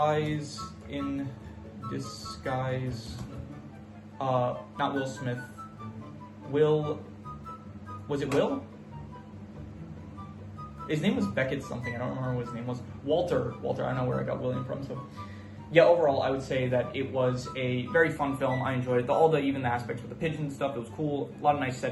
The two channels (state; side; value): identical; both; correlation 1.00